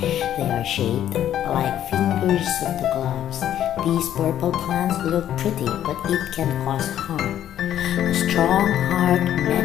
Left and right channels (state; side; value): quieter; right; 11.1 dB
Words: They are shaped like fingers of the gloves. These purple plants look pretty, but it can cause harm. A strong heart